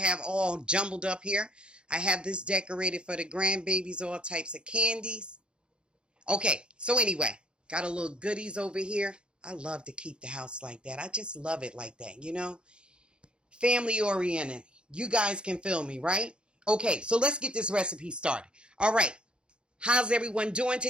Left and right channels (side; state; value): left; late; 0.053 ms